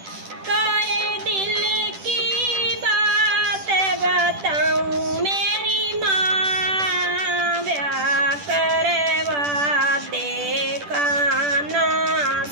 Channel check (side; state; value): left; late; 10 ms